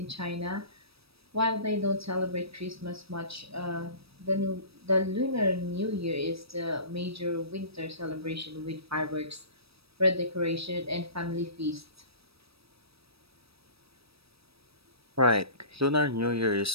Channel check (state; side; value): late; left; 0.77 ms